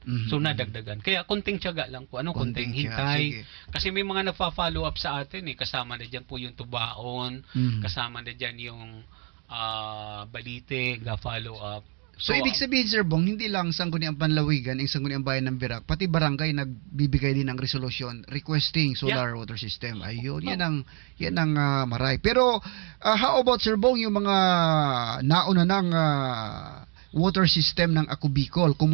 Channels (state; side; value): quieter; left; 33.3 dB